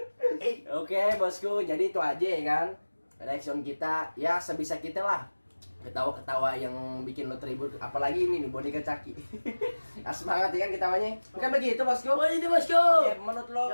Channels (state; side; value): inverted; both; correlation -1.00